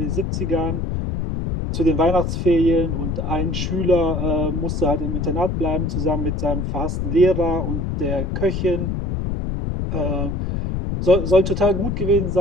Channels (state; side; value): noise; left; rumble, 2 dB below the sound